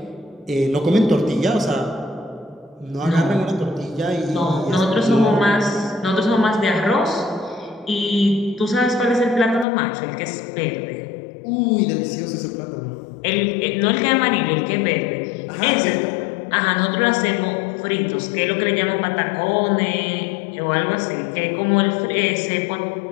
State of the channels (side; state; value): right; drops out; at 9.7 s